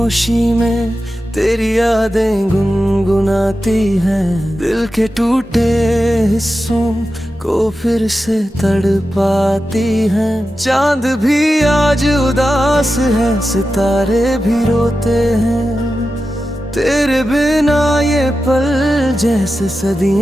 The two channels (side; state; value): both; normal; correlation 0.92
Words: में तेरी यादें गुनगुनाती हैं, दिल के टूटे हिस्सों को फिर से तड़पाती हैं। चांद भी आज उदास है, सितारे भी रोते हैं। तेरे बिना ये पल जैसे